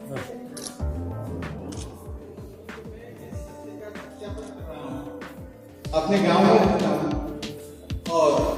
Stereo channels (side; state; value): both; identical; correlation 1.00